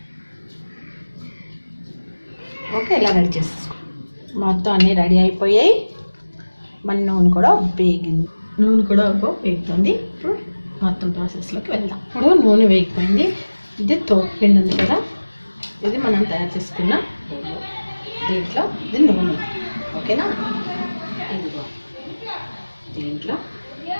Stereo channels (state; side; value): inverted; both; correlation -1.00